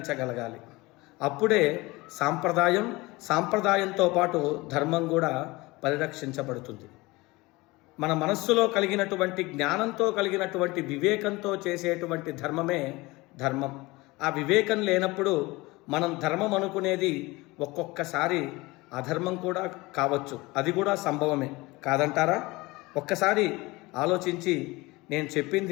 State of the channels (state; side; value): quieter; right; 22.2 dB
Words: అప్పుడే సాంప్రదాయంతో పాటు ధర్మం కూడా పరిరక్షించబడుతుంది. మన మనస్సులో కలిగినటువంటి జ్ఞానంతో కలిగినటువంటి వివేకంతో చేసేటువంటి ధర్మమే ధర్మం. ఆ వివేకం లేనప్పుడు మనం ధర్మం అనుకునేది ఒక్కొక్కసారి అధర్మం కూడా కావచ్చు. అది కూడా సంభవమే. కాదంటారా? ఒక్కసారి ఆలోచించి నేను